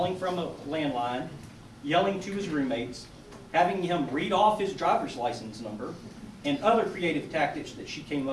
from a landline, yelling to his roommates, having him read off his driver's license number, and other creative tactics that she came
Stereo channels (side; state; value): both; identical; correlation 1.00